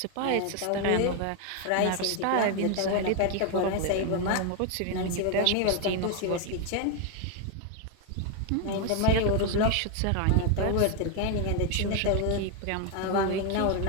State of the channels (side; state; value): both; different; correlation 0.01